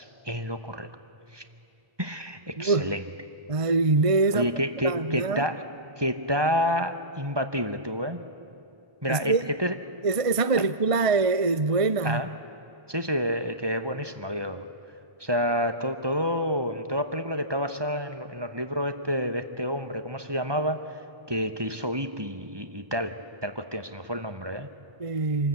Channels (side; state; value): left; late; 1.2 ms